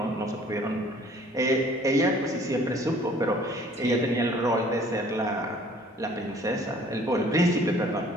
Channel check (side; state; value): both; normal; correlation 0.54